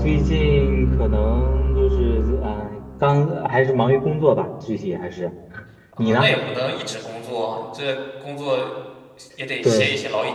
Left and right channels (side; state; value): both; identical; correlation 1.00